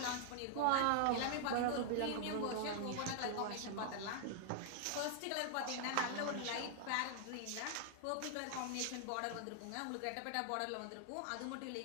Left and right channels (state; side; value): different; both; correlation 0.00